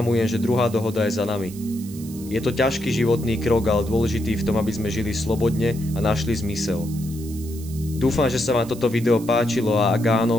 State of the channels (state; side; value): noise; right; hiss, 18 dB below the sound